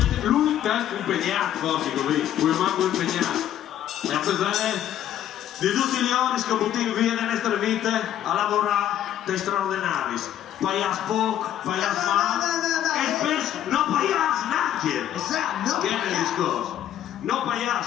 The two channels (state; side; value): quieter; right; 11.3 dB